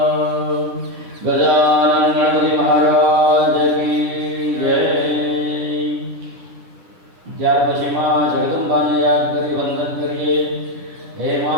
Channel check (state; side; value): late; left; 10 ms